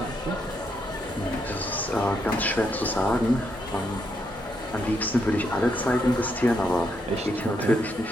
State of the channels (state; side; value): normal; both; correlation 0.78